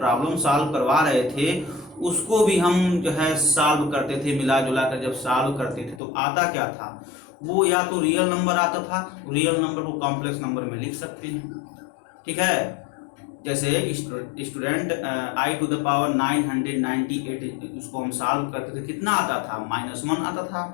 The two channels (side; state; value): right; drops out; at 6.0 s